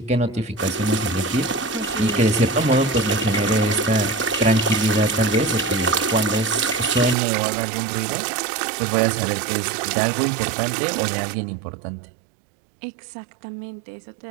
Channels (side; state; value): left; drops out; at 7.2 s